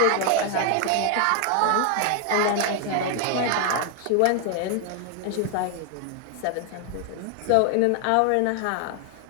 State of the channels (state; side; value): different; both; correlation 0.00